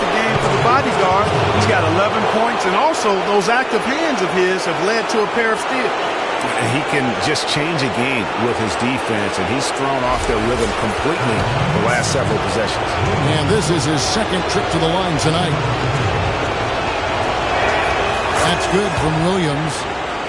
game for the bodyguard, he's got 11 points, and also those active hands of his have led to a pair of steals. He can just change a game with his defense, and he's thrown off their rhythm completely the last several possessions. And this is his second trip to the line tonight. That's good from Williams.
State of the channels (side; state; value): both; identical; correlation 1.00